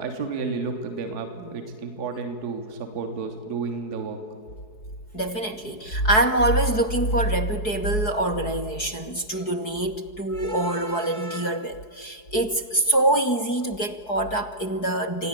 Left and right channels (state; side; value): late; right; 4.7 ms